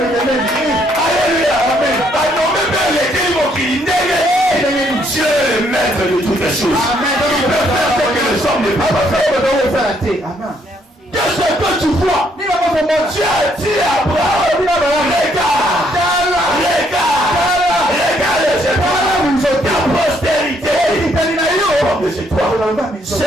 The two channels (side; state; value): both; normal; correlation 0.70